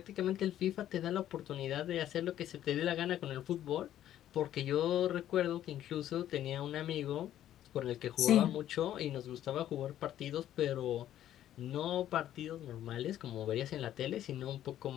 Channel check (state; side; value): quieter; right; 11.9 dB